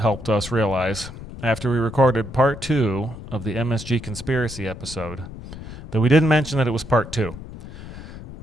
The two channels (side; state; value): left; noise; rumble, 13 dB below the sound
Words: us realize after we recorded part 2 of the MSG conspiracy episode that we didn't mention that it was part 2.